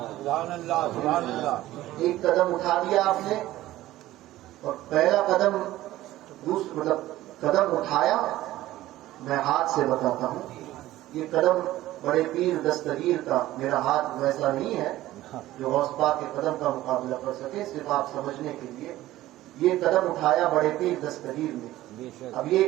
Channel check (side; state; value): left; quieter; 15.5 dB